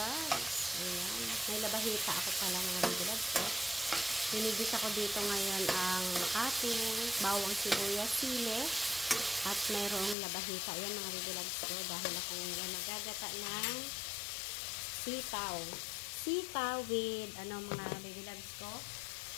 Ayan. May labahita ako pala mga baby loves. Hinigis ako dito ngayon ang ating bawang sibuyas, sili at mayroong labahita. Ayan mga baby loves ko. Dahil ako ngayon magagata ng sitaw. Sitaw with mga baby loves ko.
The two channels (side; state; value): right; drops out; at 10.2 s